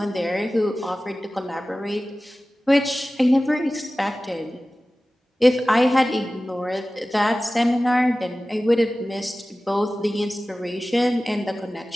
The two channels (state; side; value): normal; both; correlation 0.96